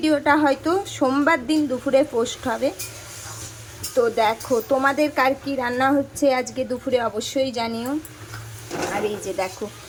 হয়তো সোমবার দিন দুপুরে পোস্ট হবে। তো দেখো তোমাদের কার কী রান্না হচ্ছে আজকে দুপুরে অবশ্যই জানিও। আর এই যে দেখো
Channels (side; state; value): both; identical; correlation 1.00